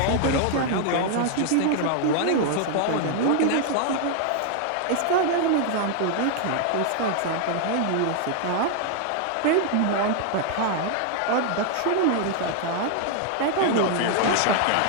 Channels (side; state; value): both; different; correlation 0.00